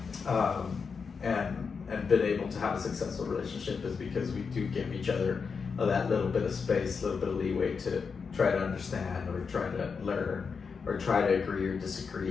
and been able to have a successful relationship is because we do give each other that little bit of space, a little bit of leeway to try to understand or try to learn or try to agree or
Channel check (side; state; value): right; quieter; 5.5 dB